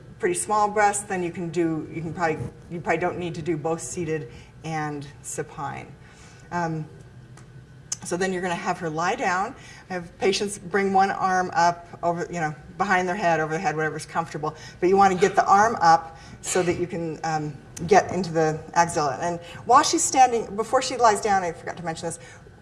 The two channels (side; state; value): both; identical; correlation 1.00